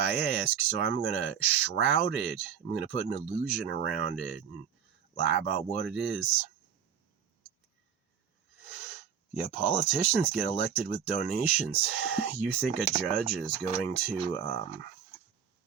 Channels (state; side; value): quieter; left; 7.9 dB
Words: ask, so I'm going to shroud it. I'm going to put an illusion around it and lie about what it is. Yeah, politicians get elected with donations. You think a judge is going to